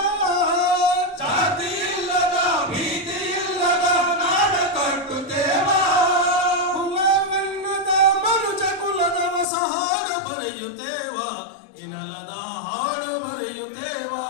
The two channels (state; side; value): drops out; right; at 9.5 s